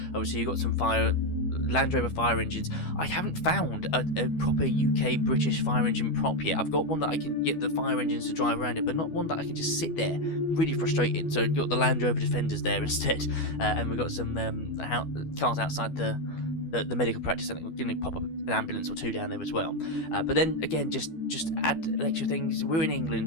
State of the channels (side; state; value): right; late; 12 ms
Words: obviously you've got some Land Rover fire engines. I haven't found a proper UK British fire engine prop yet. I've got one that I can get the fire engines to drive around it, but not one that I can just sit there. Really frustrating. So you've got the Land Rover Defenders there instead, and we've got some cars outside the medical practice. I think we're going to pop up an ambulance or two down there as well. But then again, just add extra things. We're in